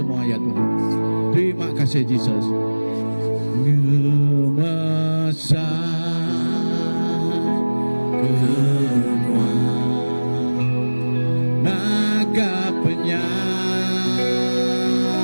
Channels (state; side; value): inverted; both; correlation -1.00